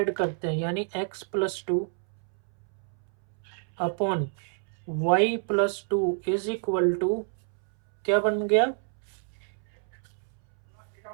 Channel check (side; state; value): left; silent; 59 dB below the other